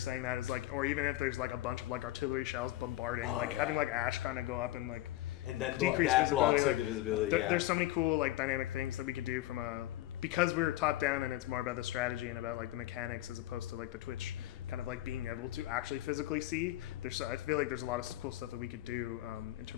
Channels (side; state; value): right; quieter; 15.8 dB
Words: that is like, or even if there's like a bunch of like artillery shells bombarding, like having like ash kind of go up and like And then decrease that blocks visibility, the visibility. There's so many cool like dynamic things that we could do from because we're top down and it's more about the strategy and about like the mechanics as opposed to like the Twitch kind of like being able to actually physically see. I feel like there's a lot of cool stuff that we could do in